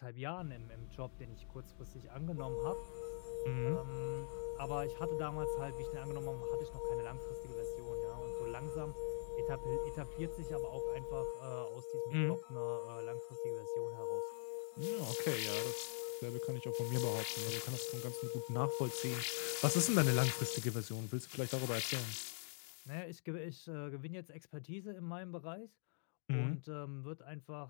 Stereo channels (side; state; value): right; silent; digital silence